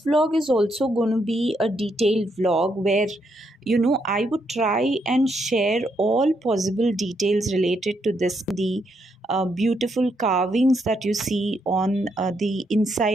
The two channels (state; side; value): normal; both; correlation 0.77